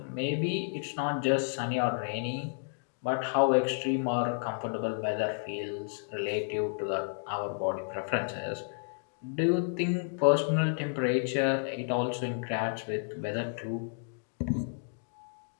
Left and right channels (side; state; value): right; silent; digital silence